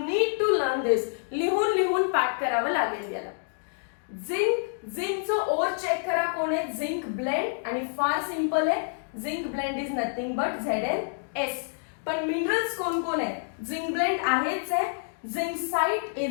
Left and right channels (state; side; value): silent; right; digital silence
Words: to learn this. लिहून पाठ करावं लागेल याला. झिंकचं ओर चेक करा कोण आहे, झिंक ब्लेंड, आणि फार सिंपल आहे, zinc blend is nothing but ZnS. पण मिनरल्स कोण कोण आहे, झिंक ब्लेंड आहेच आहे, झिंकसाइट